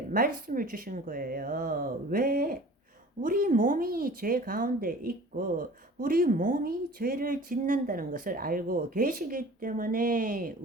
말씀을 주신 거예요. 왜? 우리 몸이 죄 가운데 있고 우리 몸이 죄를 짓는다는 것을 알고 계시기 때문에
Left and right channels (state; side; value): normal; both; correlation 0.44